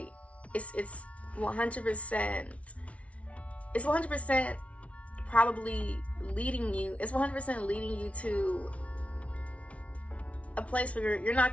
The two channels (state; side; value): late; right; 0.064 ms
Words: It's 100%, it's 100% probably leading you, it's 100% leading you to a place where you're not